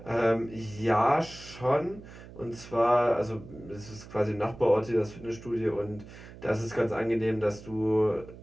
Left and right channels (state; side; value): noise; right; hum, 17 dB below the sound